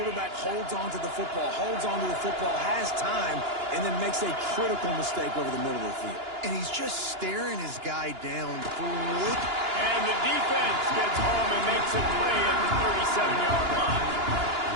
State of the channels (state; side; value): late; left; 2.9 ms